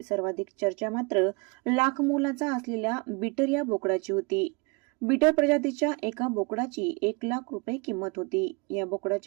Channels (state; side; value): quieter; left; 30.0 dB